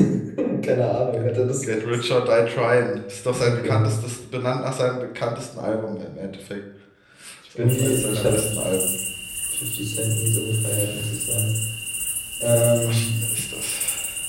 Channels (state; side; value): identical; both; correlation 1.00